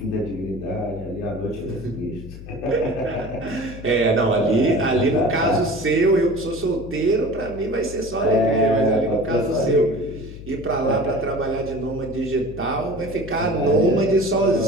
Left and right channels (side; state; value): left; noise; hum, 13 dB below the sound